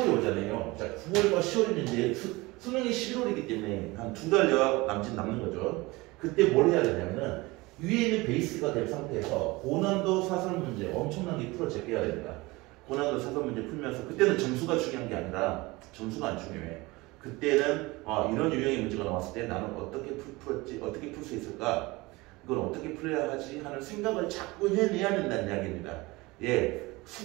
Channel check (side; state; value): left; quieter; 22.3 dB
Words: 오잖아요. 자, 9월과 10월이면 이제 수능이 11월이기 때문에 한 2달여 남는 거죠. 그때 뭘 해야 되냐면은 위에 있는 베이스가 된 상태에서 고난도 사설 문제 엄청나게 풀어 제껴야 됩니다. 고난도 사설 문제 풀면서 그때는 점수가 중요한 게 아니라 점수가 안 중요해. 그때는 이런 유형의 문제가 나왔을 때 나는 어떻게 풀었지, 어떻게 풀 수 있을까, 이걸 어떻게 풀어야 하지 하는 생각을 자꾸 해내야 된다는 이야기입니다. 예,